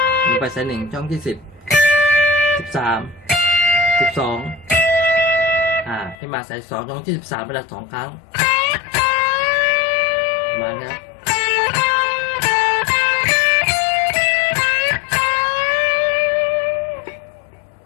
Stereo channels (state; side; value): drops out; right; at 6.2 s